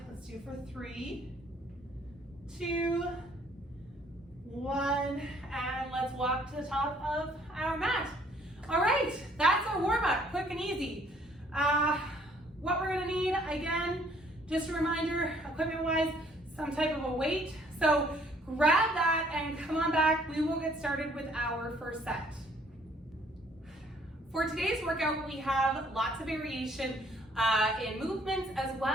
Let's do for 3, 2, 1, and let's walk to the top of our mat. All right, that's our warm-up, quick and easy. What we're gonna need, again, just a reminder, equipment-wise, some type of a weight. So grab that and come on back. We will get started with our first set. For today's workout, we have lots of variation in movements as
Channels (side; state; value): both; normal; correlation 0.62